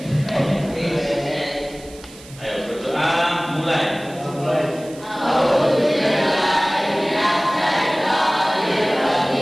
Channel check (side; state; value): right; noise; hiss, 20 dB below the sound